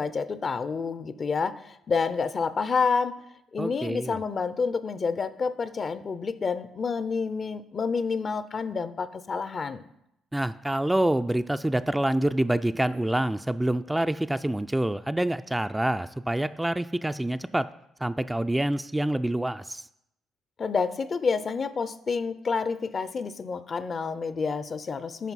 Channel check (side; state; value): both; normal; correlation 0.92